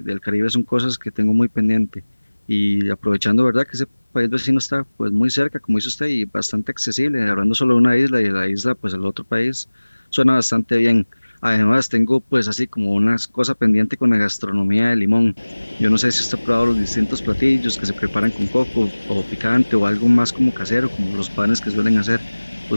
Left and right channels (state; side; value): inverted; both; correlation -1.00